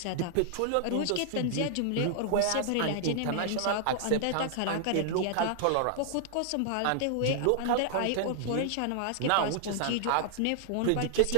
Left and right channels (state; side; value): different; both; correlation -0.01